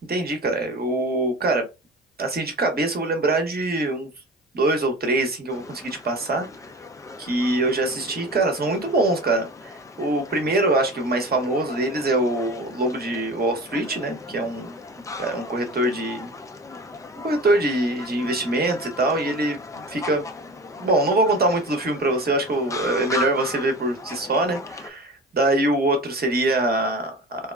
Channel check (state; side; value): normal; both; correlation 0.35